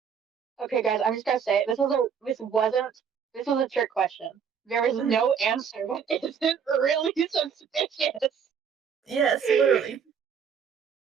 Okay, guys, I'm just gonna say this was a trick question. There is no answer that isn't really suspicious. Yes, literally.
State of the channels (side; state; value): left; quieter; 7.1 dB